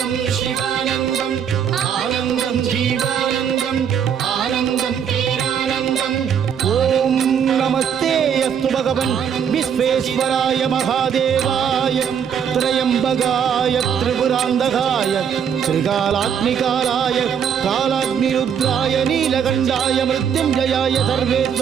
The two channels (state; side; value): quieter; left; 8.0 dB